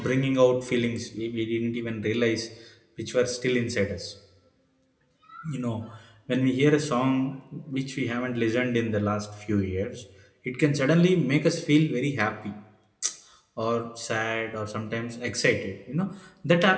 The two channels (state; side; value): identical; both; correlation 1.00